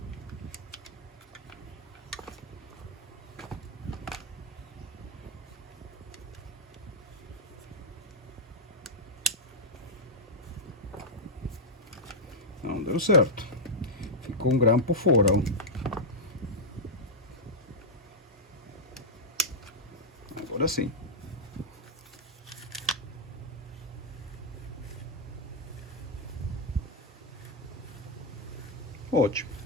Não deu certo. Ficou um grampo fora, ó. Agora sim. Ótimo.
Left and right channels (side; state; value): both; normal; correlation -0.04